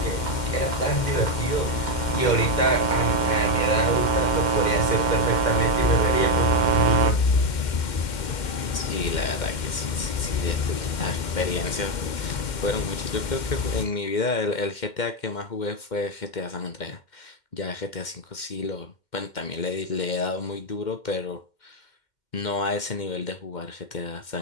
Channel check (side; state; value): right; late; 2.1 ms